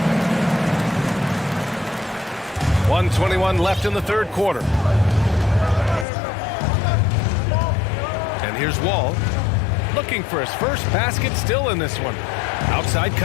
1:21 left in the third quarter. And here's Wall. Looking for his first basket still in this one. Outside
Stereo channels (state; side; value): drops out; right; at 6.1 s